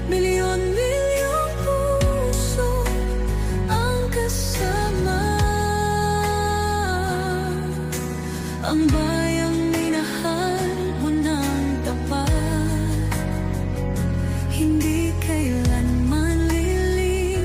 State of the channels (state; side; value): identical; both; correlation 1.00